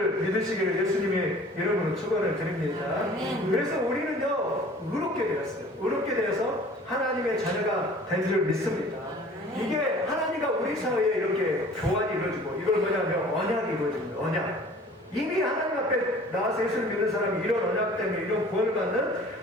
믿으시기를 예수님의 이름으로 축원을 드립니다. 그래서 우리는요, 의롭게 되었어요. 의롭게 되어서 하나님의 자녀가 된 줄 믿습니다. 이게 하나님과 우리 사이에 이렇게 교환이 이루어지고, 이걸 뭐냐면 언약이 이루어집니다. 언약. 이미 하나님 앞에 나와서 예수를 믿는 사람이 이런 언약 때문에 이런 구원을 받는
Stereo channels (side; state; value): both; normal; correlation 0.48